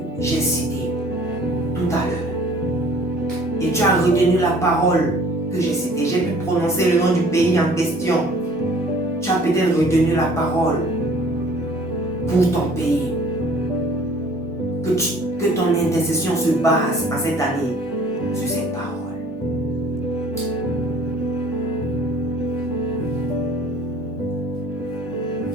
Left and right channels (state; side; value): noise; right; hum, 27 dB below the sound